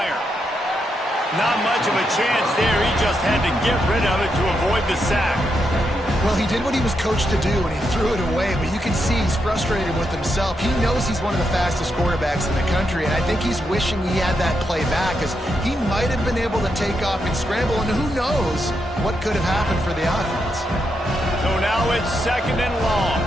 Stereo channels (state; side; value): normal; both; correlation 0.82